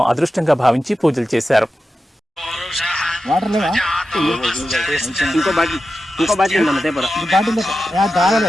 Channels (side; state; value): both; normal; correlation 0.91